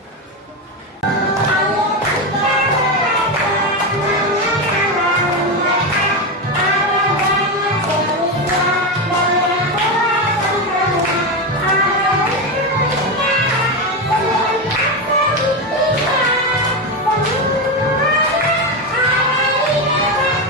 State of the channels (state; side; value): normal; both; correlation 0.13